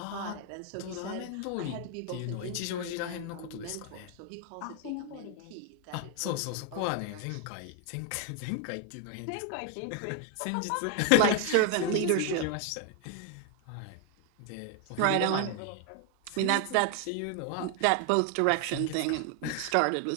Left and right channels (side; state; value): both; different; correlation 0.01